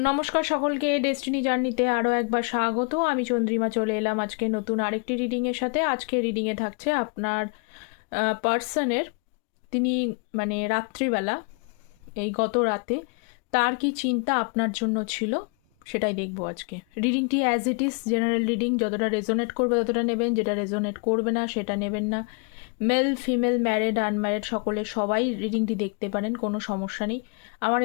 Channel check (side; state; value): right; quieter; 35.7 dB